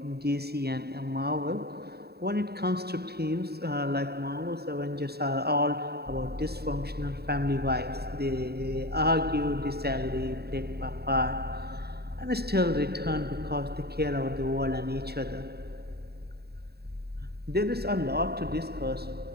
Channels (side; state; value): left; late; 0.47 ms